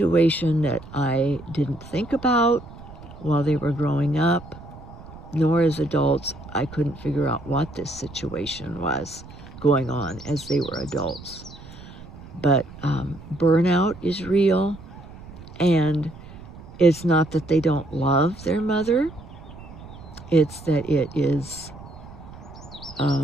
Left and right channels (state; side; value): noise; right; rumble, 17 dB below the sound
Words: that I didn't think about while they were growing up, nor as adults. I couldn't figure out what this situation was going on as they were adults. But burnout is real, and it's not that they don't love their mother. It's that it is